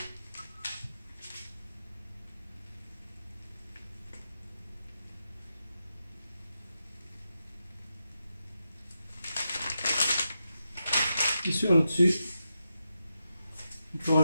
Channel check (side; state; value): both; inverted; correlation -0.88